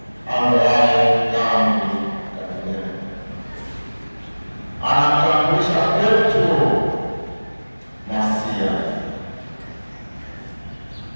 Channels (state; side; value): inverted; both; correlation -1.00